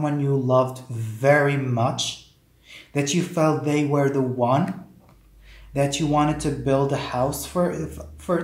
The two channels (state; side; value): identical; both; correlation 1.00